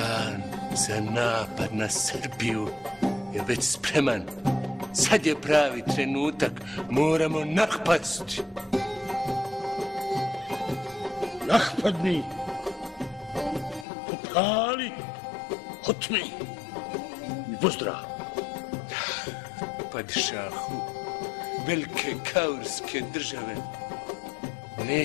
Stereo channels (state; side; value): drops out; right; at 13.9 s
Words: za napad na Srbiju je već spreman. Sad je pravi trenutak, moramo napasti. Napadni, popali, otmi i pozdrav. Padšahu, velike kaurske države